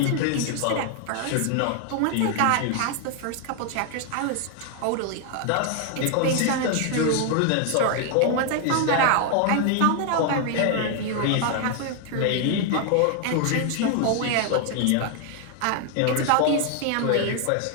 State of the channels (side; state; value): both; different; correlation 0.00